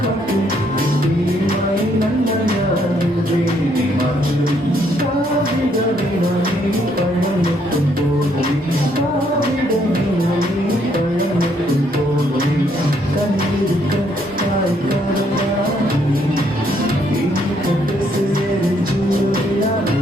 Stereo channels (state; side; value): normal; both; correlation 0.70